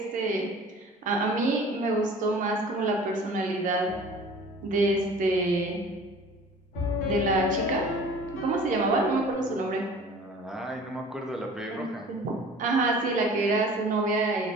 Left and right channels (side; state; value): both; normal; correlation 0.45